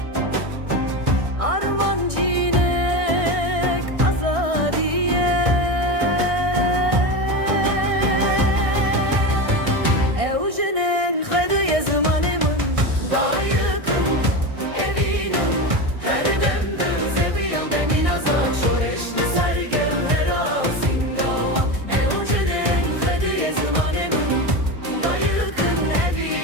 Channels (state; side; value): late; left; 1.6 ms